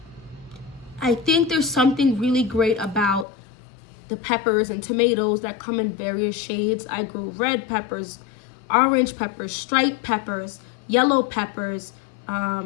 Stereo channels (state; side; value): drops out; right; at 3.2 s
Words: I think there's something really great about the peppers and tomatoes that come in various shades. I grew red peppers, orange peppers, striped peppers, yellow peppers,